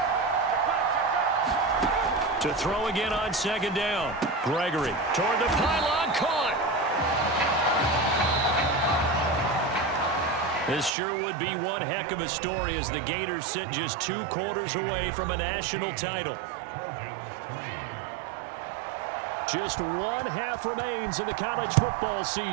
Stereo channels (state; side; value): drops out; left; at 10.9 s